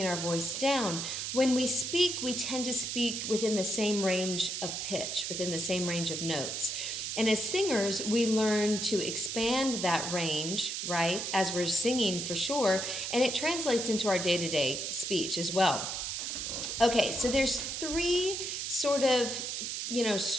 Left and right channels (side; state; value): right; noise; hiss, 3 dB below the sound